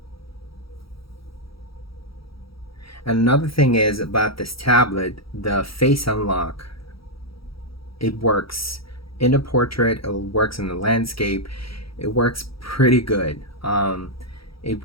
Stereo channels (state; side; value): late; right; 0.75 ms